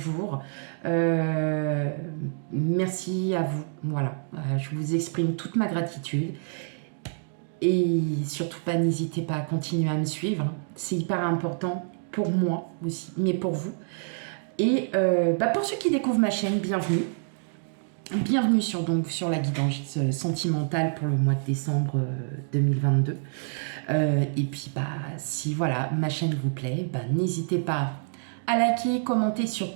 Merci à vous. Voilà, je vous exprime toute ma gratitude. Et surtout pas, n'hésitez pas à continuer à me suivre. C'est hyper important pour moi aussi, mais pour vous. Et pour ceux qui découvrent ma chaîne, bienvenue. Bienvenue sur la guidance sentimentale pour le mois de décembre 2022. Et puis, si voilà, ma chaîne vous plaît, n'hésitez pas à liker, commenter,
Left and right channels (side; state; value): left; silent; digital silence